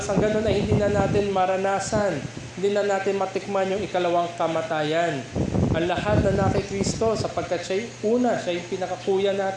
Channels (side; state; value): both; identical; correlation 1.00